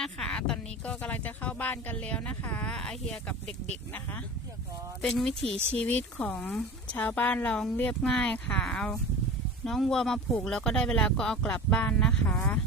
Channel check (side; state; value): both; normal; correlation 0.33